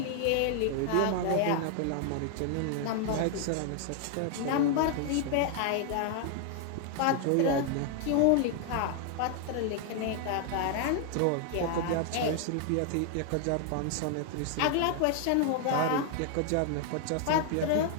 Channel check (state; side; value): different; both; correlation 0.00